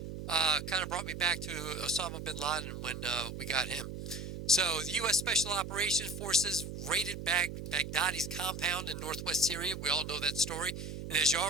Kind of brought me back to Osama bin Laden when we got him. So, the U.S. Special Operations Forces raided Baghdadi's compound in northwest Syria. We all know that story. And as you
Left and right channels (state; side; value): noise; right; hum, 8 dB below the sound